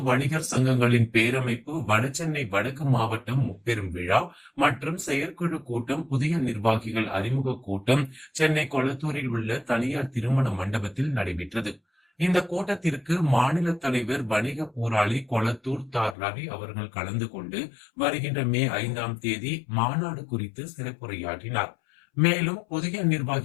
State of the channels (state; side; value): drops out; right; at 16.2 s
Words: வணிகர் சங்கங்களின் பேரமைப்பு வடசென்னை வடக்கு மாவட்டம் முப்பெரும் விழா மற்றும் செயற்குழு கூட்டம் புதிய நிர்வாகிகள் அறிமுக கூட்டம் சென்னை கொளத்தூரில் உள்ள தனியார் திருமண மண்டபத்தில் நடைபெற்றது. இந்த கூட்டத்திற்கு மாநில தலைவர் வணிக போராளி கொளத்தூர் ரவி அவர்கள் கலந்து கொண்டு வருகின்ற மே 5ஆம் தேதி மாநாடு குறித்து சிறப்புரையாற்றினார். மேலும் புதிய